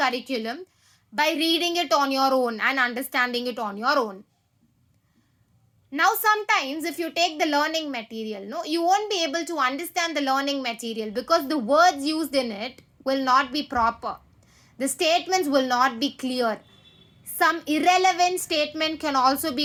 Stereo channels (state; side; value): identical; both; correlation 1.00